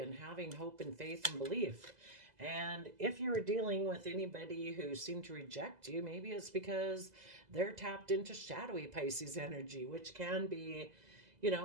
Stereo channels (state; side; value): late; left; 2.0 ms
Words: having hope and faith and belief. And if you are dealing with anybody who seemed to reject you, maybe it's because they're tapped into shadowy Pisces energy, which can be,